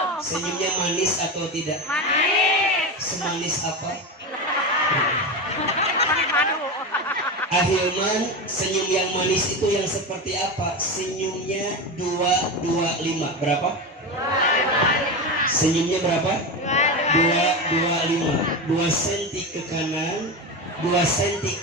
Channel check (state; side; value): normal; both; correlation 0.20